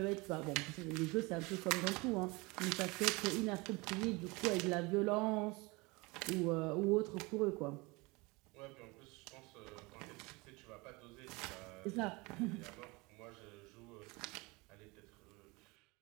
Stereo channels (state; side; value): quieter; left; 25.3 dB